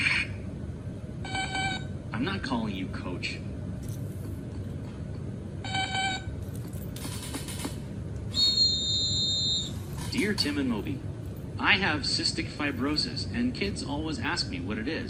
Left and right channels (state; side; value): identical; both; correlation 1.00